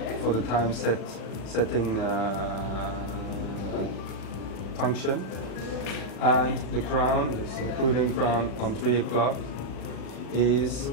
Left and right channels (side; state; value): right; late; 36 ms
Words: for the time setting function. And the crown, the screwed in crown on 3 o'clock, is